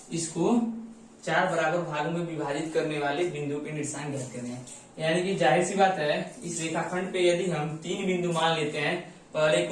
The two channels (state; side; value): identical; both; correlation 1.00